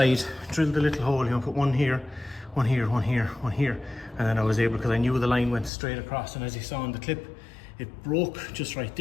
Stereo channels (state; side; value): drops out; right; at 5.7 s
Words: drilled a little hole, you know, put one here, one here, one here, one here. And then I was able, because I knew the line went straight across, and as you saw in the clip, it broke just right